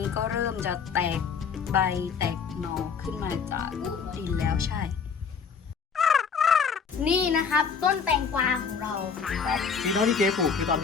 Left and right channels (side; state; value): right; quieter; 6.1 dB